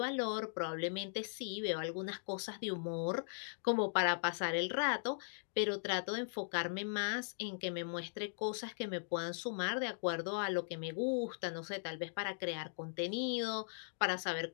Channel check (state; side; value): silent; right; digital silence